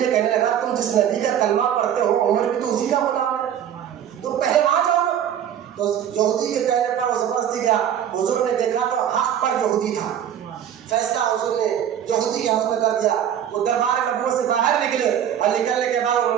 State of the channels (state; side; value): quieter; left; 9.7 dB